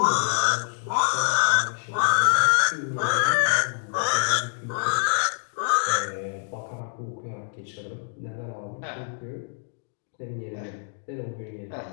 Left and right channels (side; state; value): right; silent; digital silence